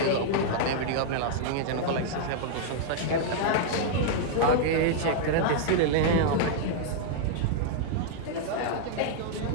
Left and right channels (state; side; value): different; both; correlation -0.01